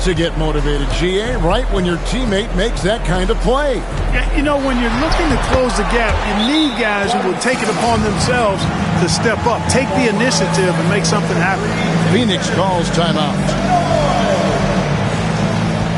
to get motivated, GA, right when your teammate makes that kind of play. Yeah, you know, when you're looking to close the gap, you need guys who will take it upon themselves to step up, take the initiative, and make something happen. Phoenix calls timeout.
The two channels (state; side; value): identical; both; correlation 1.00